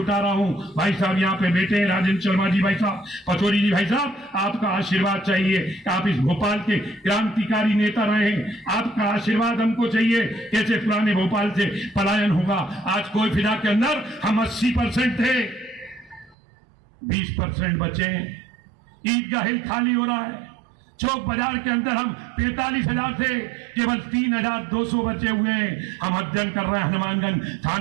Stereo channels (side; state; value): left; drops out; at 16.4 s